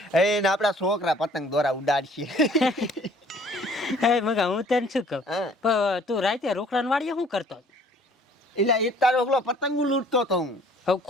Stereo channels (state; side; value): normal; both; correlation 0.55